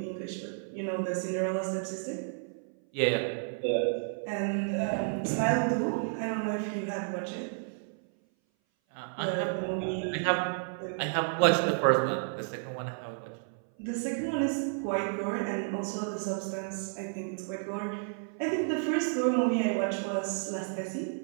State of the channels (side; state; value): left; silent; 57 dB below the other